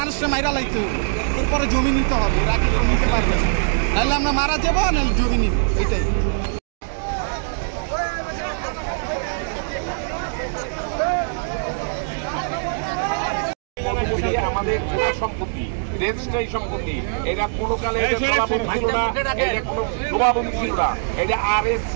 মাইরা লাইতে হবে, এরপরে জমি নিতে হবে, এরা কি নিতে পারবে না, নাহলে আমরা মারা যাবো, নাহলে জমি নিব, এটাই। আমাদের সম্পত্তি, রেজিস্ট্রারি সম্পত্তি, এটা কোনো কালে জলাভূমি ছিল না, এটা কোনো ডোবাভূমি ছিল না, এটা RSC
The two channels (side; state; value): left; silent; digital silence